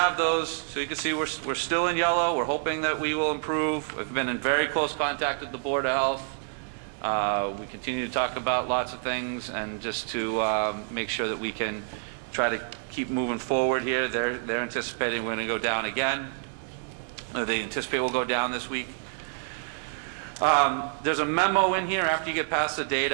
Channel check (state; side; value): silent; left; digital silence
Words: those. So you can see we're still in yellow. We're hoping that we will improve. We've been in very close contact with the Board of Health. We continue to talk about lots of things, and just to make sure that we can try to keep moving forward here. They're anticipating we're going to go down again. They anticipate we'll go down this week. There's a memo in here after you get past the